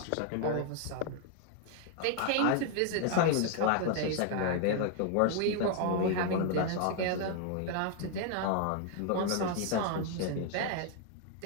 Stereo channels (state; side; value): different; both; correlation 0.00